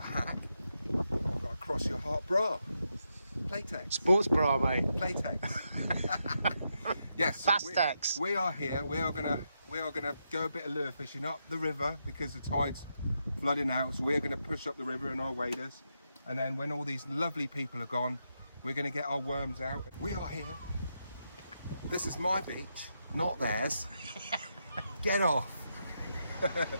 hack. You've got a cross your heart bra. Playtex. Sports bra, mate. Playtex. Yes. So Fastex. we are here. We are gonna go a bit of lure fishing up the river because the tide's flooding out. So we're gonna push up the river in our waders, and then when all these lovely people are gone, we're gonna get our worms out. We are here. This is my beach, not theirs. Get off.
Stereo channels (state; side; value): inverted; both; correlation -0.83